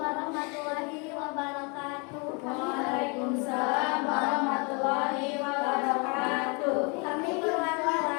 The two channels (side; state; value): right; quieter; 32.5 dB